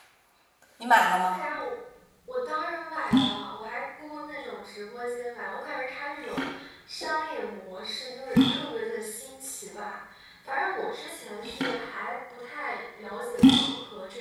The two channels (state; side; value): identical; both; correlation 1.00